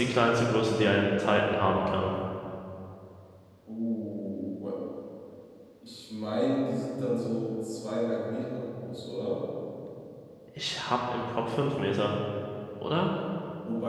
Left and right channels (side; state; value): both; identical; correlation 1.00